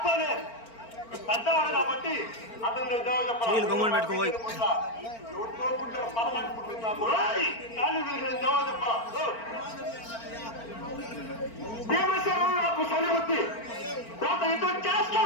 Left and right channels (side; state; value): right; late; 4.4 ms